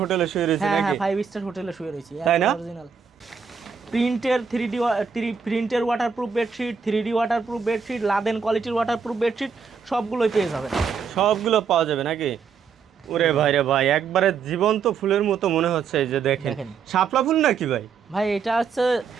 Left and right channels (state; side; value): quieter; left; 6.1 dB